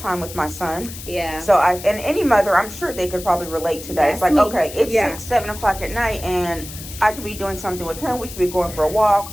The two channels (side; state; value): left; noise; hiss, 13 dB below the sound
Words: with my son. Yeah. So and any mother, I'm sure they could probably relate to that. That's it's like, me. okay, it's 6, 7 o'clock at night, and I could be doing something with him. We could be going for a